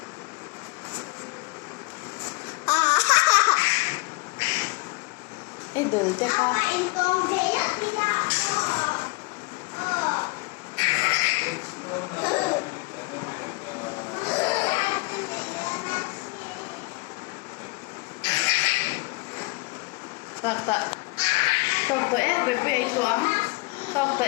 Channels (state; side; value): quieter; right; 25.7 dB